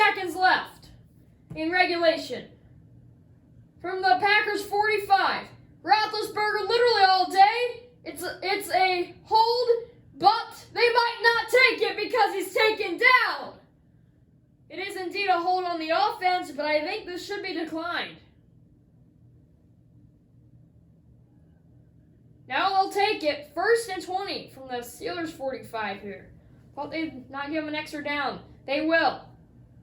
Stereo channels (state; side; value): identical; both; correlation 1.00